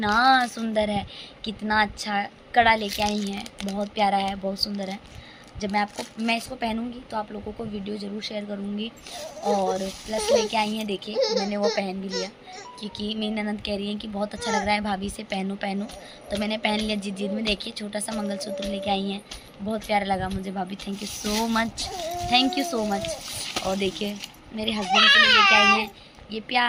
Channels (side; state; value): both; identical; correlation 1.00